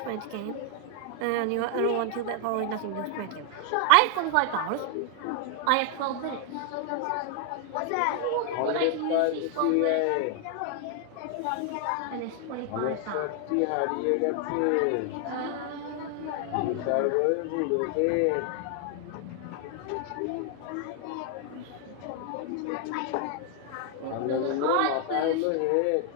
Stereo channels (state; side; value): different; both; correlation 0.00